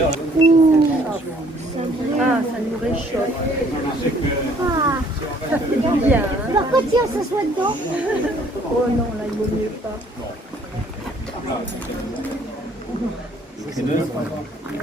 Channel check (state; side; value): normal; both; correlation 0.60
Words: Ah, ça nous réchauffe. Ah, Ça fait du bien. Hein? pourquoi tu s'assoit dedans? Oh non, là, il vaut mieux pas. Ça